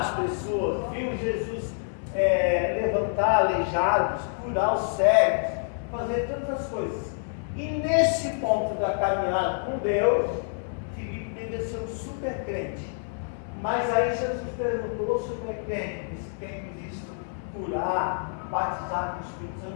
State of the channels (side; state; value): right; silent; 60 dB below the other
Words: pessoas, viu Jesus levantar aleijados, curar os cegos, fazer tantas coisas. E nesse ponto da caminhada com Deus, Filipe devia ser um super crente. Mas aí Jesus perguntou sobre o crente, esse tem visto curar, batizar com o Espírito